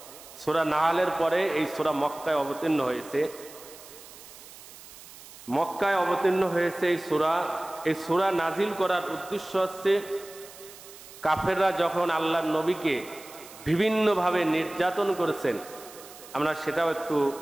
সূরা নাহলের পরে এই সূরা মক্কায় অবতীর্ণ হয়েছে। মক্কায় অবতীর্ণ হয়েছে এই সূরা। এই সূরা নাজিল করার উদ্দেশ্য হচ্ছে কাফেররা যখন আল্লাহর নবীকে বিভিন্নভাবে নির্যাতন করেছেন, আমরা সেটাও একটু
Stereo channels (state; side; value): noise; right; hiss, 18 dB below the sound